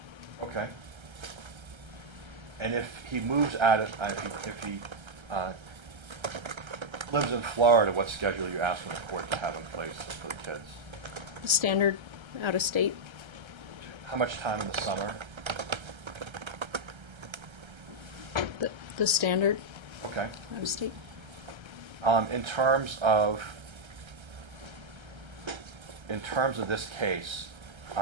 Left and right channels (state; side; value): late; left; 1.3 ms